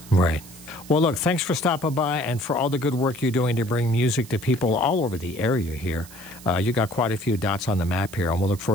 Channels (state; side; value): noise; right; hiss, 19 dB below the sound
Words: Right. Well, look, thanks for stopping by and for all the good work you're doing to bring music to people all over the area here. You got quite a few dots on the map here, and we'll look